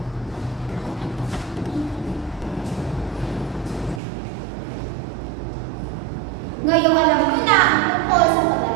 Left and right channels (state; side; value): drops out; left; at 4.0 s